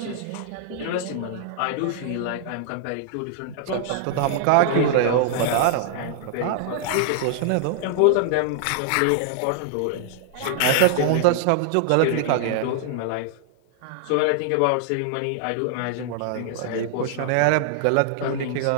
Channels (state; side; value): different; both; correlation -0.01